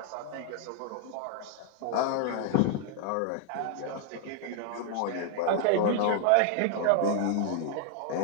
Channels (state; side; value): different; both; correlation 0.00